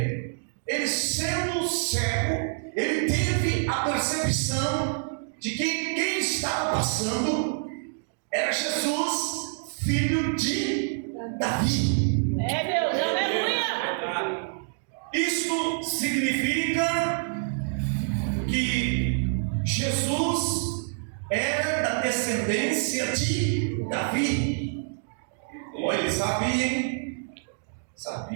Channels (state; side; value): silent; left; digital silence